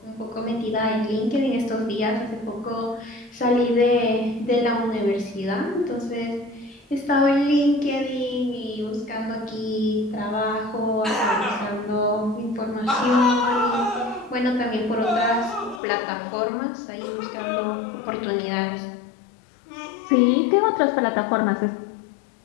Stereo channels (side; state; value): right; drops out; at 15.8 s